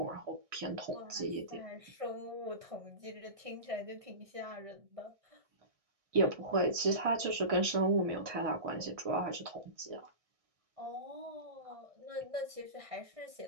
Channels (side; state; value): left; late; 1.6 ms